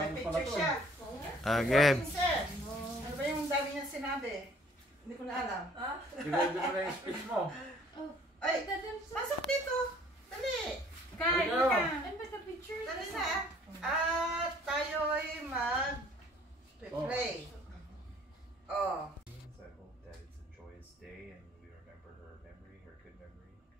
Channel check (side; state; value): both; normal; correlation 0.56